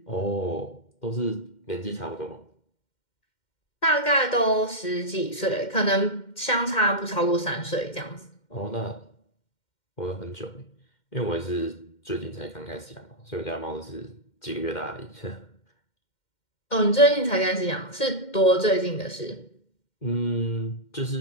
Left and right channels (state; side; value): late; right; 2.1 ms